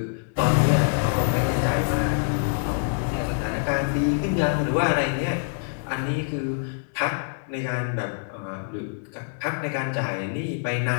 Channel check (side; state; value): right; silent; 62 dB below the other